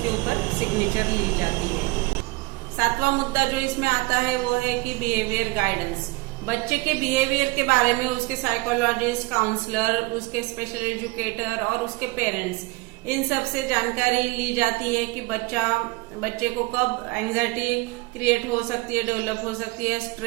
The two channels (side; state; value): left; quieter; 23.4 dB